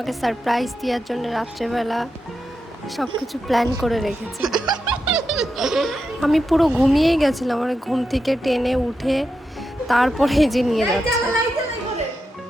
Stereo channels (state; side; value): normal; both; correlation 0.87